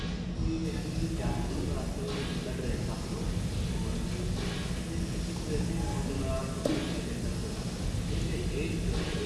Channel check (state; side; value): identical; both; correlation 1.00